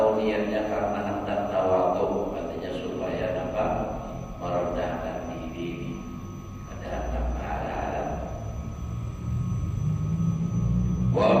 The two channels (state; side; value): identical; both; correlation 1.00